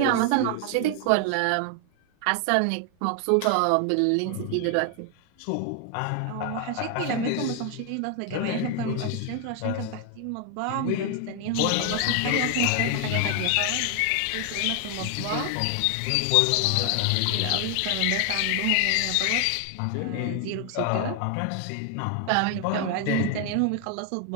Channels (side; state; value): both; different; correlation 0.00